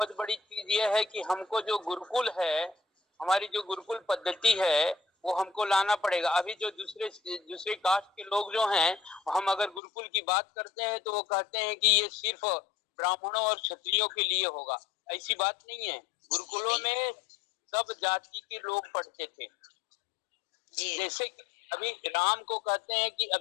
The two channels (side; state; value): right; drops out; at 9.8 s